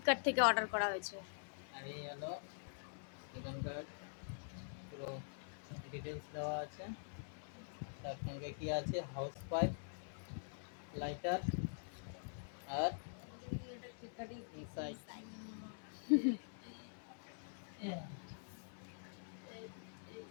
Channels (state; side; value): silent; right; digital silence